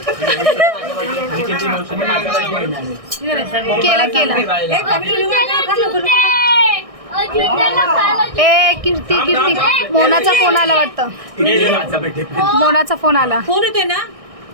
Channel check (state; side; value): late; left; 1.6 ms